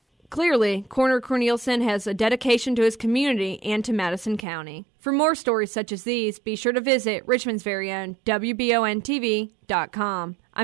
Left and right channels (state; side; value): drops out; left; at 4.5 s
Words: Clearly, Coroner Cornelison has a dedication to his community and to Madison County. For more stories such as these, be sure to visit Richmond's very own WBONTV.com.